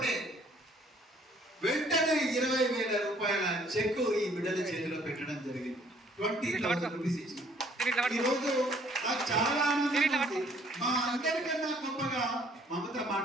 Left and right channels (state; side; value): normal; both; correlation 0.61